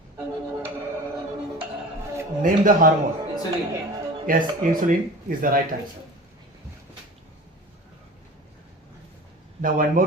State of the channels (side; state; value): both; normal; correlation 0.38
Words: Name the hormone. Insulin. Yes, insulin is the right answer. Now one